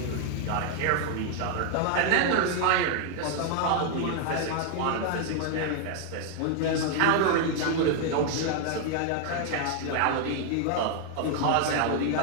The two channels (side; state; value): both; different; correlation 0.00